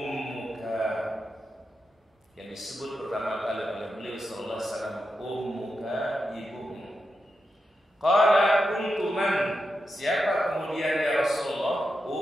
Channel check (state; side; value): normal; both; correlation 0.87